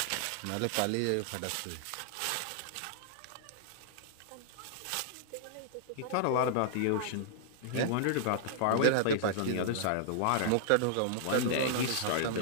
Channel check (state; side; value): different; both; correlation -0.01